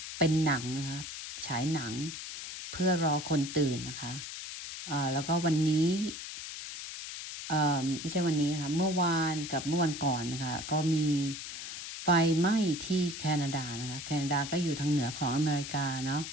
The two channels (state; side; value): noise; left; hiss, 8 dB below the sound